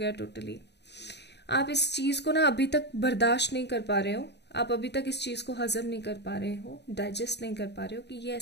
टोटली। आप इस चीज को ना अभी तक बर्दाश्त नहीं कर पा रहे हो, आप अभी तक इस चीज को हजम नहीं कर पा रहे हो, डाइजेस्ट नहीं कर पा रहे हो कि ये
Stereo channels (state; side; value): late; right; 0.50 ms